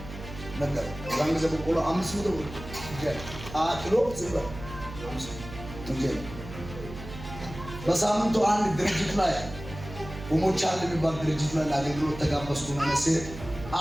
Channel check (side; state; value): right; noise; hum, 12 dB below the sound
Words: ነገር ዛን ጊዜ በቆሎ 500 ብር ኪሎ ዝም ብለህ በሳምንቱ አንድ ድርጅት ላይ ኡሞቻል የሚባል ድርጅት ላይ ለአገልግሎት ተጋበዝኩ። መነሴ